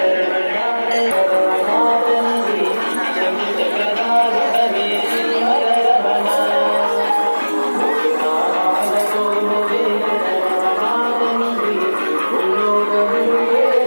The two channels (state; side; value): inverted; both; correlation -1.00